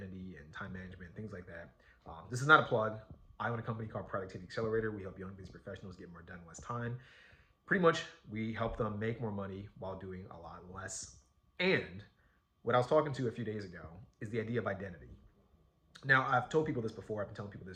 and time management, things like that. This is not a plug. I own a company called Productivity Accelerator. We help young business professionals get more done in less time. Pretty much, we help them make more money while doing a lot less. And what I was talking to a few days ago is the idea of identity. Now, I've told people this before, I've been telling people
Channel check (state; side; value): identical; both; correlation 1.00